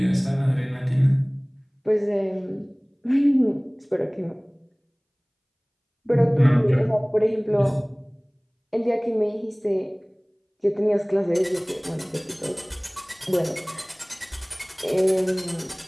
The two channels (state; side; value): identical; both; correlation 1.00